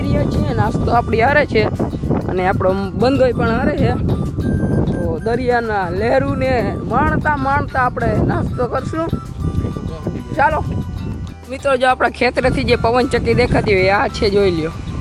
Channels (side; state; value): both; identical; correlation 1.00